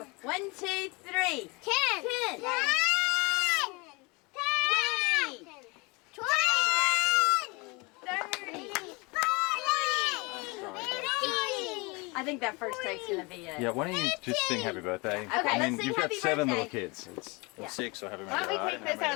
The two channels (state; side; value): quieter; right; 27.5 dB